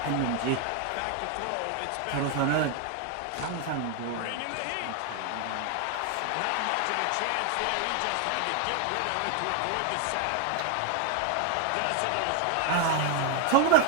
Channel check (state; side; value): different; both; correlation 0.01